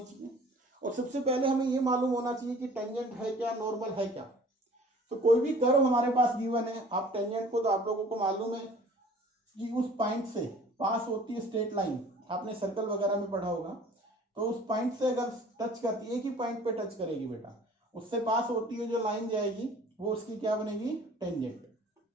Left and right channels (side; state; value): both; normal; correlation 0.49